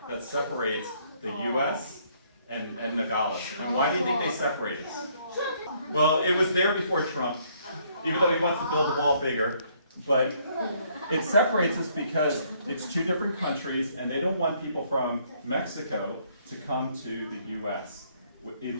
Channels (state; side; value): inverted; both; correlation -0.67